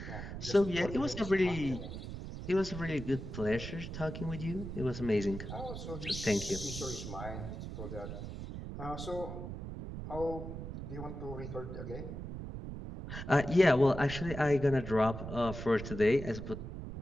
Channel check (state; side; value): noise; right; rumble, 8 dB below the sound